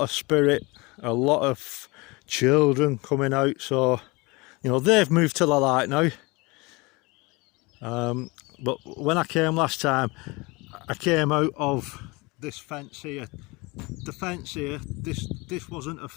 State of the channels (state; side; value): quieter; right; 25.3 dB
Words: of spirit, a lot of children coming out, so you know they've moved to the light now. But when I came last time, I came out of this fence here. The fence here, this wasn't a